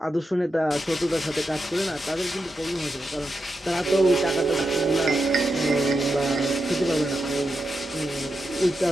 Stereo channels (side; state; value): both; normal; correlation 0.87